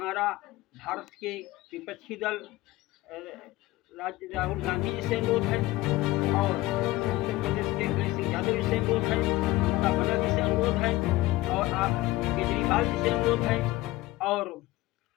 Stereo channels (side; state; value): right; quieter; 18.3 dB